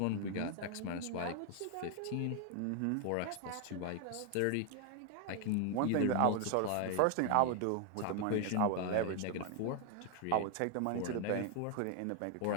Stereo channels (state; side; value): different; both; correlation 0.00